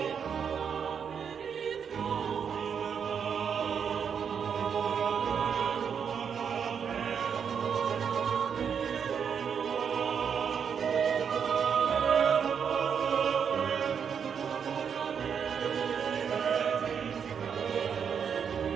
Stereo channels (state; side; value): quieter; left; 7.2 dB